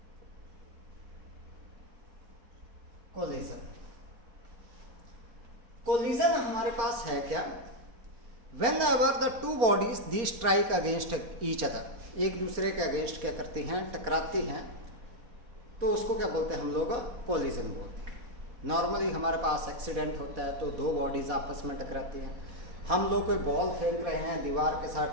कोलिजन, कोलिजन हमारे पास है क्या, when ever the two bodies the strike against each other, एक दूसरे के अगेंस्ट क्या करती हैं, टकराती हैं, तो उसको क्या बोलते हैं हम लोग, कोलिजन बोलते हैं। नॉर्मली हमारे पास एक्सीडेंट होता है तो दो बॉडीज आपस में टकराती हैं। हम लोग कोई बॉल फेंक रहे हैं, दीवार के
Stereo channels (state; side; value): late; left; 4.1 ms